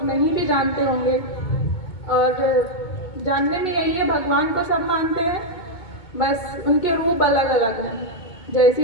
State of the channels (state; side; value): late; right; 2.2 ms